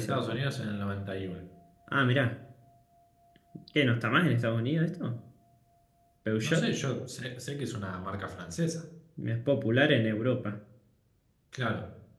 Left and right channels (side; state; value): both; identical; correlation 1.00